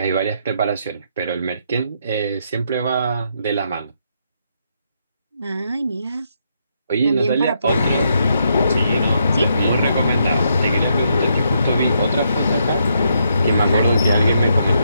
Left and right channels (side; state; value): both; inverted; correlation -0.77